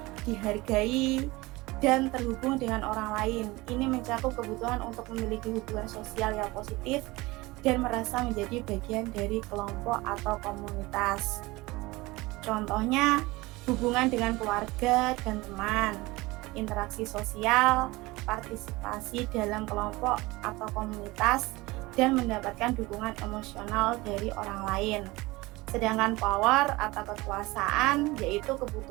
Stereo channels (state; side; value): quieter; left; 21.5 dB